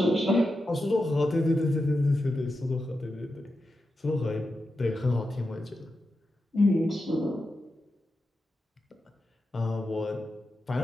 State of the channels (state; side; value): normal; both; correlation 0.89